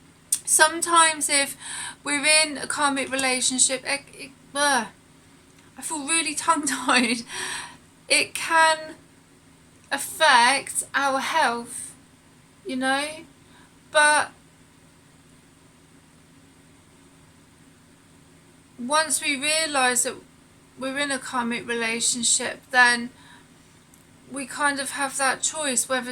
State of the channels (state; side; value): identical; both; correlation 1.00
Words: Sometimes if we're in a karmic relationship, I feel really tongue-tied. It can affect our health, you know, but once we realise that we're in a karmic relationship, then we kind of have that choice whether